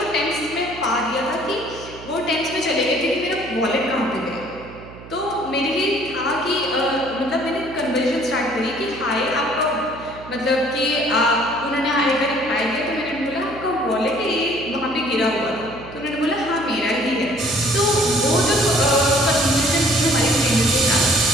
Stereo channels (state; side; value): noise; right; hum, 16 dB below the sound